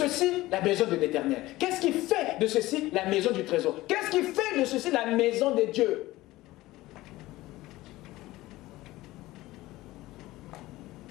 la maison de l'Éternel. Qu'est-ce qui fait de ceci la maison du trésor? Qu'est-ce qui fait de ceci la maison de Dieu?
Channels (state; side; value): quieter; right; 17.9 dB